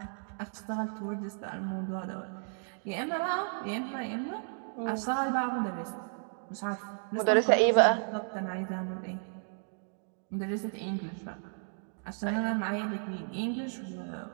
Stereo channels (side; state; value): left; silent; 55 dB below the other